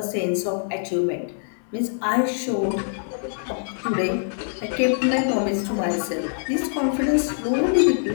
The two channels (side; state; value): right; silent; digital silence